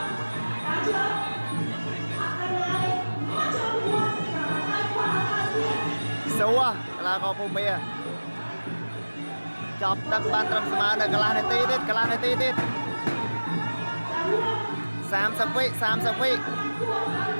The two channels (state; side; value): inverted; both; correlation -1.00